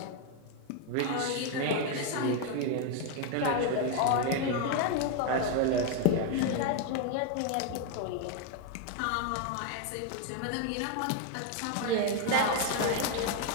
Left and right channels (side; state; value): both; different; correlation 0.01